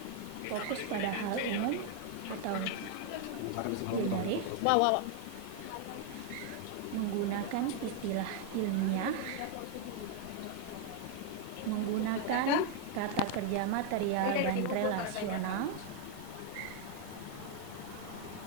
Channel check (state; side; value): different; both; correlation 0.00